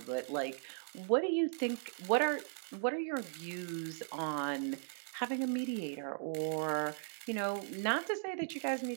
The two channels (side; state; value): left; silent; digital silence